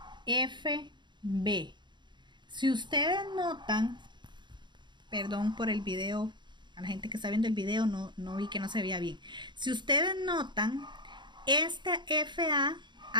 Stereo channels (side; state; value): left; late; 0.22 ms